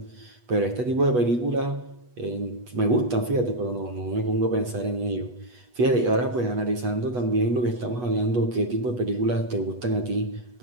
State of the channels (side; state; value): left; late; 8.2 ms